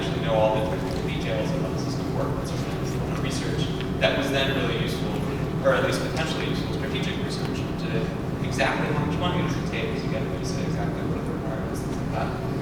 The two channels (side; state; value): both; identical; correlation 1.00